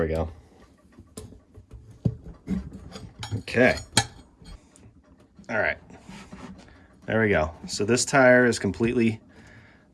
we go. Okay. All right. There we go. So this tire is completely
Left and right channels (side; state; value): both; identical; correlation 1.00